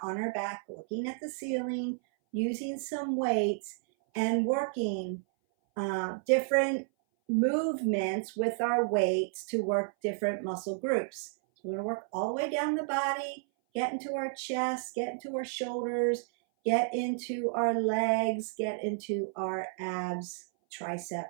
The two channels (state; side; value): silent; left; 57 dB below the other